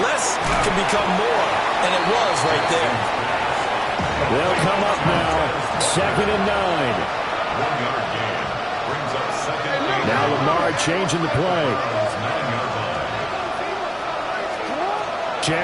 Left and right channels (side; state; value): both; identical; correlation 1.00